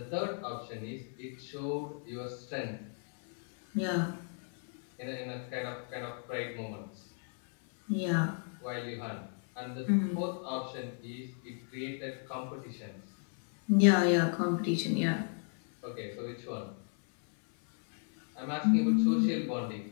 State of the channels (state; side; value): silent; right; 54 dB below the other